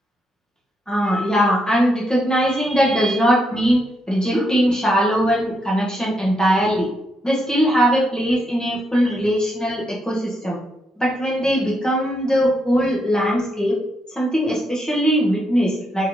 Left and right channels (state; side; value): normal; both; correlation 0.79